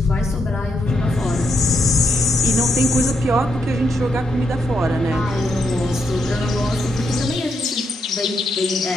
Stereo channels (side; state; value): both; normal; correlation 0.80